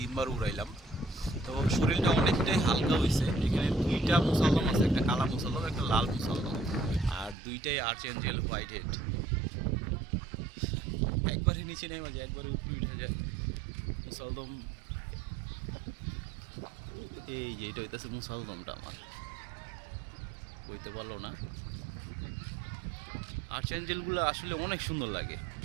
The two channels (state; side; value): drops out; left; at 7.4 s